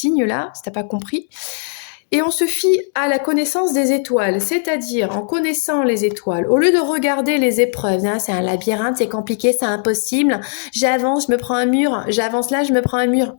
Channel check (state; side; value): silent; right; digital silence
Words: là, si tu n'as pas compris. Et on se fie à la connaissance des étoiles, c'est-à-dire en connaissant les étoiles, au lieu de regarder les épreuves, hein, c'est un labyrinthe, c'est compliqué, c'est impossible, j'avance, je me prends un mur, j'avance là, je me prends un mur.